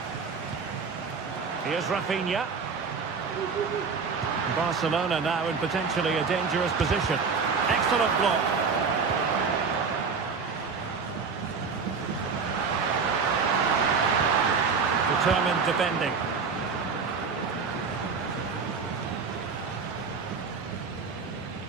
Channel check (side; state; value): left; quieter; 5.3 dB